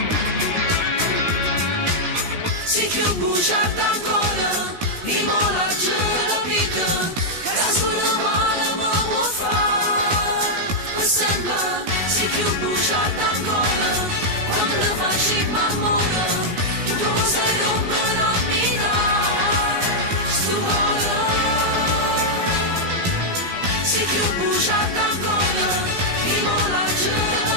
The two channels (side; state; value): left; late; 16 ms